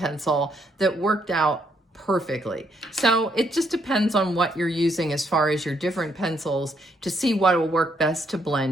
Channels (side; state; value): both; normal; correlation 0.74